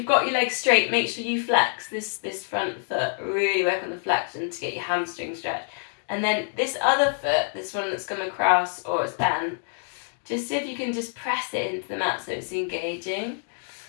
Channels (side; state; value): right; silent; 61 dB below the other